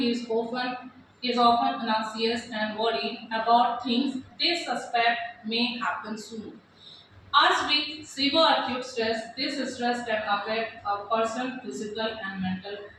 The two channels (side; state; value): both; identical; correlation 1.00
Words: is often anxious and worried about things they suspect may happen soon. As with severe acute stress, this stress can affect a person's physical and mental